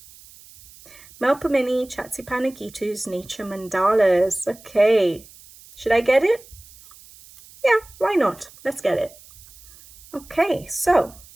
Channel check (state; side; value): noise; right; hiss, 22 dB below the sound